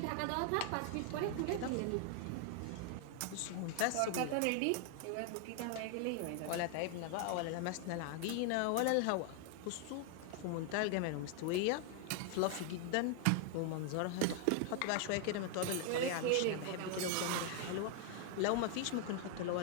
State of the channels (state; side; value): different; both; correlation 0.00